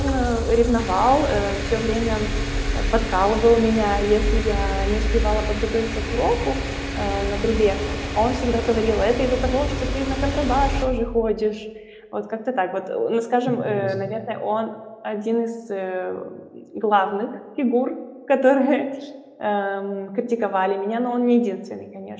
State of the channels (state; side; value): identical; both; correlation 1.00